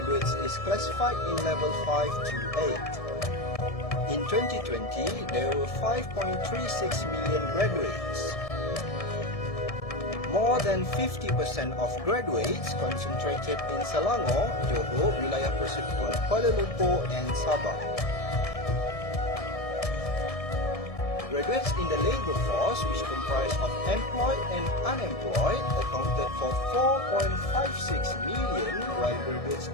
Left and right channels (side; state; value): right; late; 1.7 ms